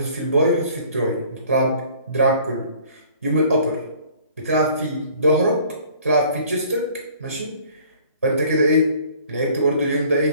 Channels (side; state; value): both; inverted; correlation -0.53